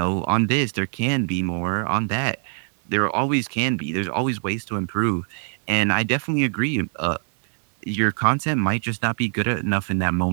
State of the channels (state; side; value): silent; left; 63 dB below the other